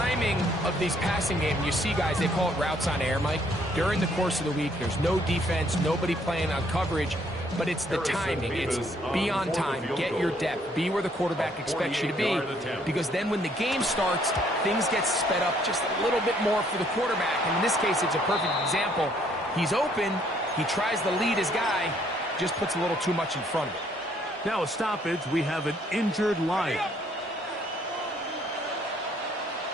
of these passing games, you see guys, they call it routes on air, Mike. During the course of the week, there's no defense, nobody playing on coverage, but it's the timing. It's be on time, get your depth, be where the quarterback expects you to be, because then when the game starts, things get sped up just a little bit more for the quarterback. And in this case, it's a perfect example. He's open, he tries to lead his guy, just puts a little too much in front of him. Now a stoppage, we have an injured Lion.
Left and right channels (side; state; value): both; normal; correlation 0.66